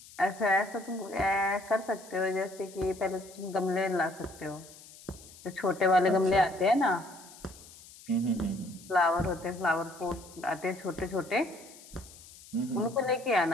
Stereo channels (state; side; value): noise; left; hiss, 20 dB below the sound